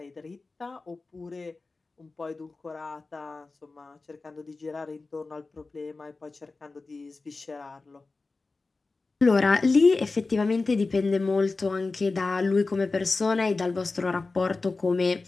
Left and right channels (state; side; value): quieter; right; 3.7 dB